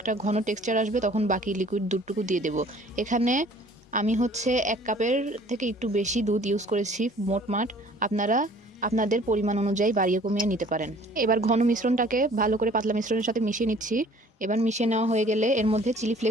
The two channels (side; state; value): both; normal; correlation 0.53